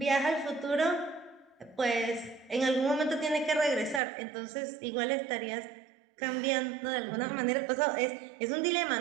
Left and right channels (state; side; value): drops out; left; at 4.0 s